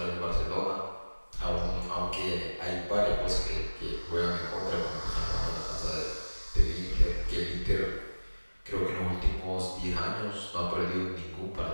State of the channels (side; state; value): both; inverted; correlation -1.00